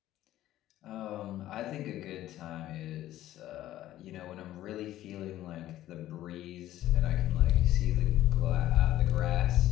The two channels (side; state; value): right; quieter; 13.9 dB